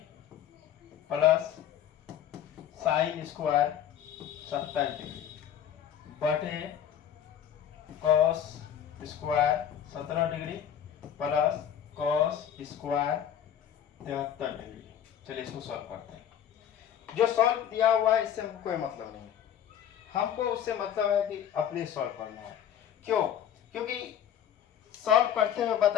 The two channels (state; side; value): quieter; right; 9.6 dB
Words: plus sine square 27 degree बटे cos square 17 degree plus cos square 73 degree. चलिए इसको सॉल्व करते हैं। जो सॉल्व दिया हुआ है इससे हमको कोई मतलब नहीं है, हमको उससे मतलब है कि अपने सॉल्व करना है। क्यों? क्योंकि सॉल्व करते हुए